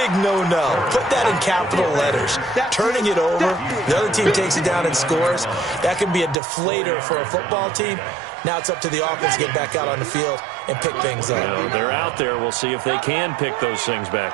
no-no. Put that in capital letters. Turning it over, the other team takes it down and scores. That can be a deflator for a football team. Now it's up to the offense to get back out on the field and pick things up. Well, they're out there. We'll see if they can pick those things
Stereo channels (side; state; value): left; drops out; at 6.4 s